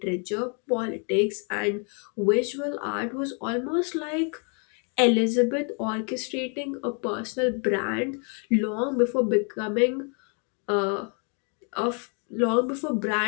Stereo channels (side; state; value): right; quieter; 38.7 dB